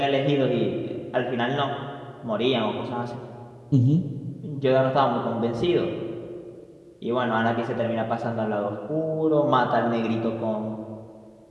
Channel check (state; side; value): identical; both; correlation 1.00